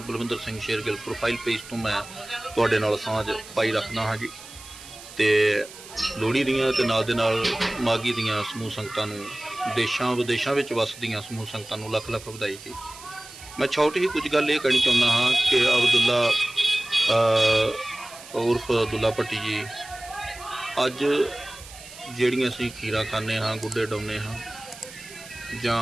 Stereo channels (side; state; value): right; noise; hiss, 17 dB below the sound